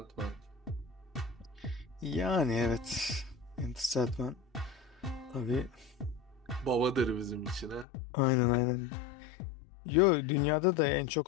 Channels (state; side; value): drops out; right; at 7.9 s